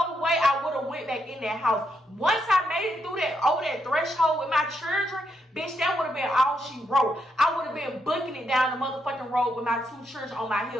way I would have went back in that house. Once I made it through over that threshold with my children, bitch, that would have been all she wrote. I would have been booking it down the motherfucking road with my two children on my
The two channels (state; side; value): normal; both; correlation 0.80